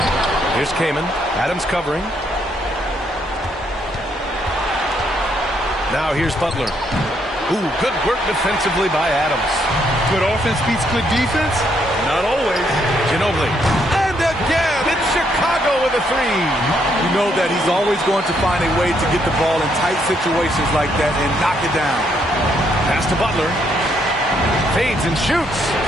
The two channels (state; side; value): normal; both; correlation 0.73